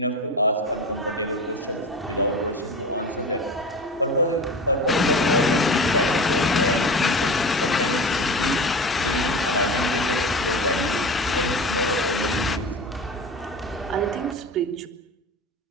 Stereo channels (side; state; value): both; normal; correlation 0.30